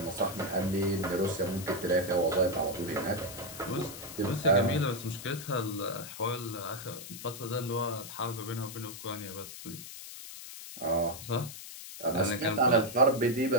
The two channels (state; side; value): noise; left; hiss, 12 dB below the sound